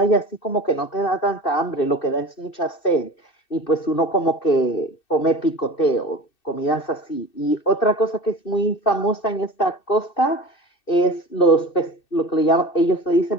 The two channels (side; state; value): right; late; 2.6 ms